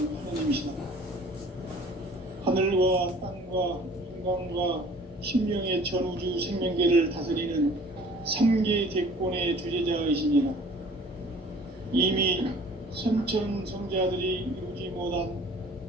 하나님이시다. 하늘과 땅과 인간과 심령의 전우주 생명계를 다스리는 3개 대권의 주재자이시니라. 이미 선천성자들이 이루지 못한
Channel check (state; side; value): normal; both; correlation 0.50